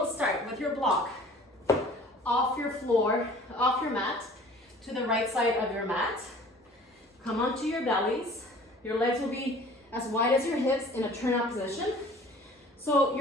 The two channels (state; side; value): normal; both; correlation 0.48